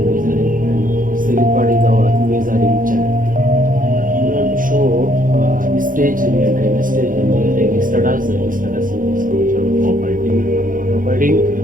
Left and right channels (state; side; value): late; left; 0.40 ms